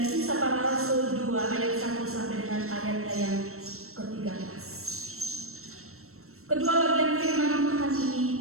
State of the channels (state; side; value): late; left; 0.63 ms